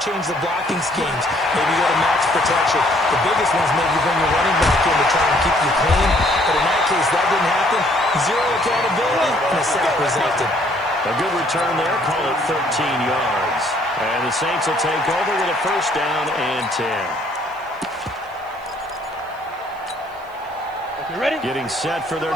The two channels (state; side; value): noise; right; hiss, 30 dB below the sound